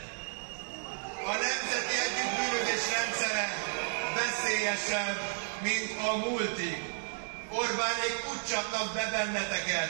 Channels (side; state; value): left; silent; digital silence